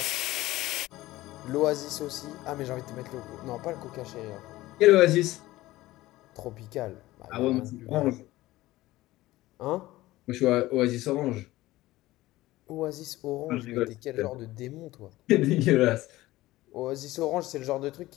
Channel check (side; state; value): right; quieter; 17.4 dB